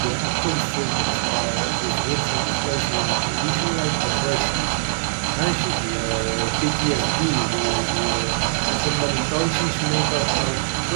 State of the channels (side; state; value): left; silent; 64 dB below the other